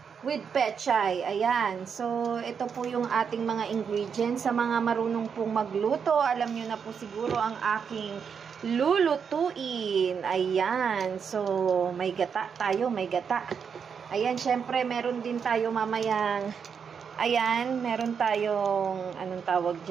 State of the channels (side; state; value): left; quieter; 6.7 dB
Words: with pechay. Ayan. So, ito po yung ating mga ingredients. Sa mga marunong pong magluto, alam nyo na po siguro ang aking lulutuin. Ayan. So, may gata tayo. May gata. Ayan, syempre, meron din tayo mamayang, ayan, meron tayong, anong tawag